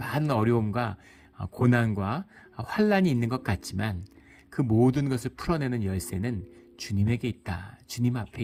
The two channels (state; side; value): identical; both; correlation 1.00